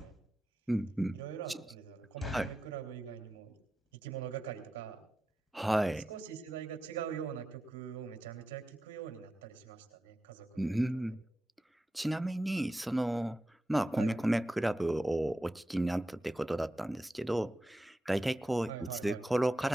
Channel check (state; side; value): normal; both; correlation 0.91